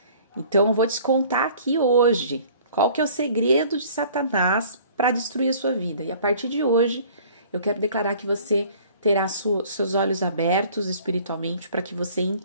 Então eu vou te contar aqui hoje qual que é o segredo de Satanás para destruir a sua vida. E a partir de hoje, eu quero declarar que você terá seus olhos abertos espiritualmente para que você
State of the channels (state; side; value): inverted; both; correlation -0.51